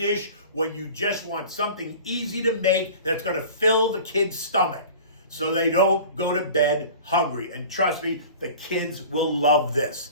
when you just want something easy to make that's going to fill the kid's stomach, so they don't go to bed hungry. And trust me, the kids will love this.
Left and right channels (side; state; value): both; inverted; correlation -0.41